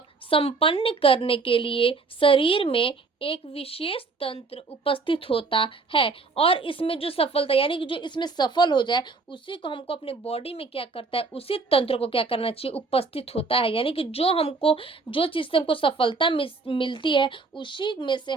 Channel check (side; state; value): left; quieter; 4.1 dB